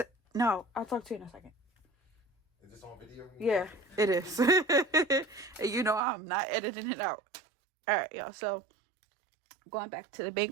no, I'll talk to you in a second. Is this on video? Yeah, it is. And you know I'm not editing it out. Alright, y'all, so going back to the bank,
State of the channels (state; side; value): drops out; left; at 6.0 s